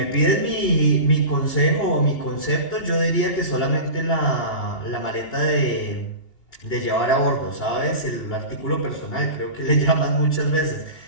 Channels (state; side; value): late; right; 2.8 ms